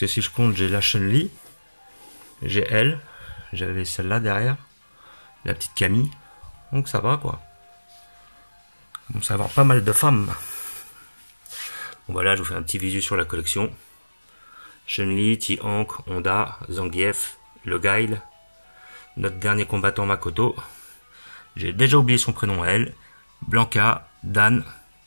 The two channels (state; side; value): inverted; both; correlation -1.00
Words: que si je compte, j'ai la Chun-Li, j'ai elle, j'avais celle-là derrière, la petite Camille. Donc ça va quoi. On va avoir pas mal de femmes. Bon voilà, je vous fais un petit visu sur la collection. Chun-Li, Ti-Hank, Honda, Zangief, le Guile, notre dernier combattant Makoto. J'ai déjà oublié son prénom à elle. Blanka, Dan,